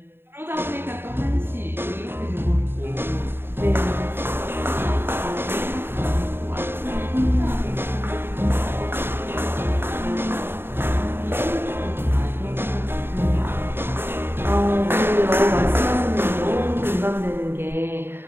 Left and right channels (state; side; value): late; left; 0.11 ms